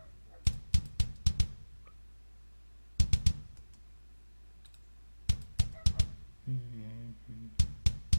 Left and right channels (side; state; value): both; inverted; correlation -1.00